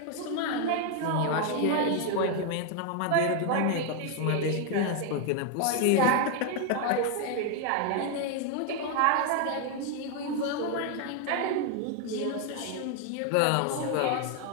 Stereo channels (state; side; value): different; both; correlation 0.01